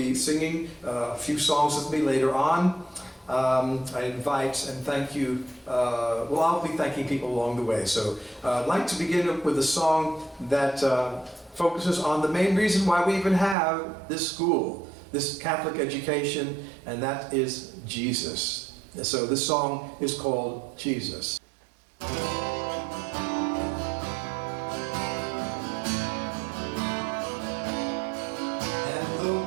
singing a few songs with me later on. I invite and thank you. Well, I'll be thanking people along the way. So I'd like to begin with a song that focuses on the main reason why we even have this school, this Catholic education, and that is Jesus. So this song is called Jesus.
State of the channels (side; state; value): left; drops out; at 13.6 s